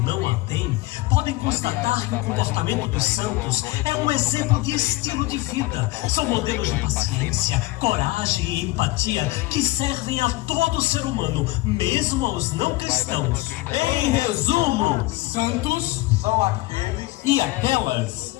não a têm, podem constatar que o comportamento dos santos é um exemplo de estilo de vida. São modelos de paciência, coragem e empatia que servem a todo ser humano, mesmo aos não cristãos. Em resumo, Santos são aqueles e aquelas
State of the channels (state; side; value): quieter; right; 20.0 dB